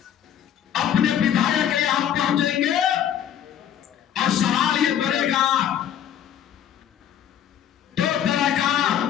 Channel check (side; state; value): right; quieter; 9.8 dB